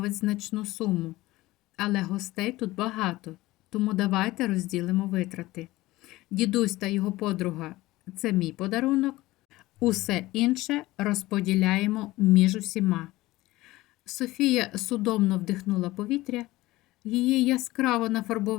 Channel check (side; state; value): right; quieter; 18.4 dB